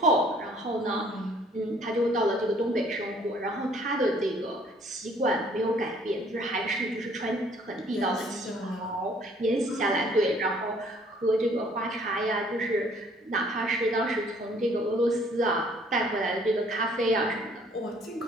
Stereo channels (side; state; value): both; normal; correlation 0.59